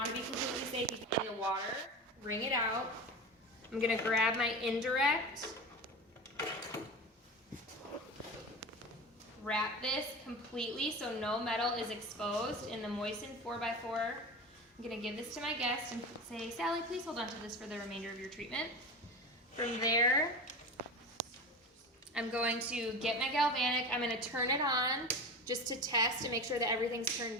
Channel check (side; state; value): both; normal; correlation 0.28